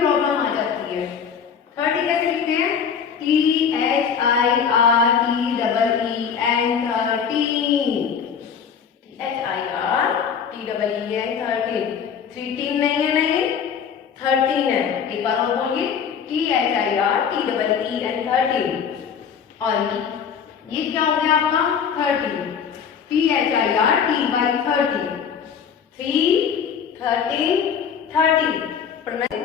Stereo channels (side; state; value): right; quieter; 7.1 dB